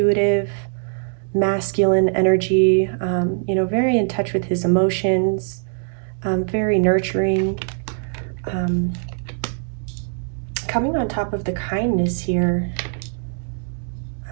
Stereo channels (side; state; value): left; silent; digital silence